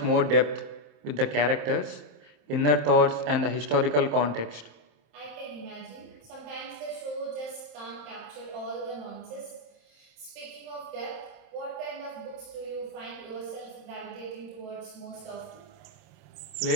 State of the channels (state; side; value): late; left; 27 ms